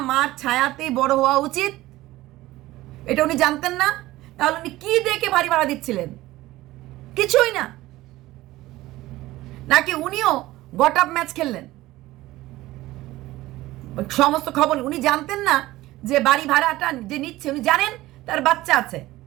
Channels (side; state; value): left; quieter; 17.2 dB